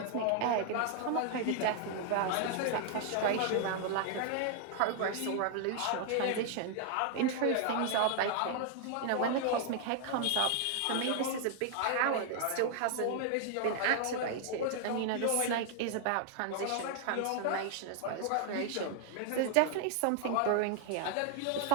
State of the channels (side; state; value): both; different; correlation 0.00